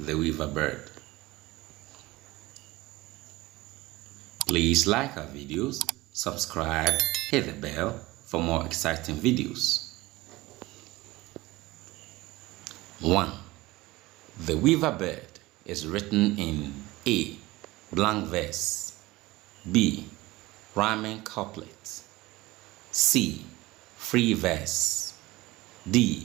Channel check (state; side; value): quieter; left; 19.8 dB